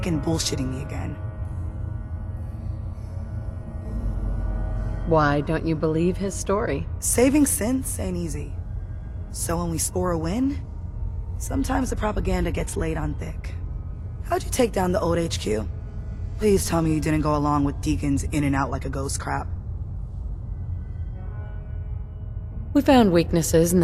bullshitting me again? Why don't you believe his story? Saving synths ain't easy. So when we score a win, sometimes the propaganda gets laid on thick. How'd you take down the old HQ? Please tell me you didn't go along with Deacon's in and out like a ghost crap. We found weaknesses in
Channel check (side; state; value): both; identical; correlation 1.00